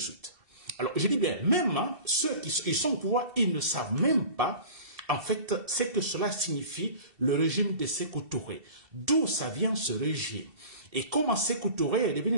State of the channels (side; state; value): left; late; 2.7 ms